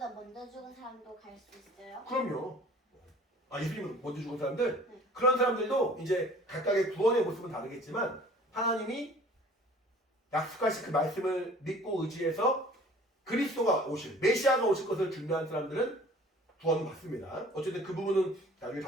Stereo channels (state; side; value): normal; both; correlation 0.49